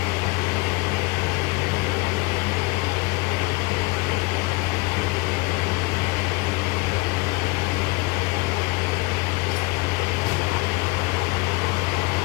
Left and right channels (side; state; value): right; quieter; 24.9 dB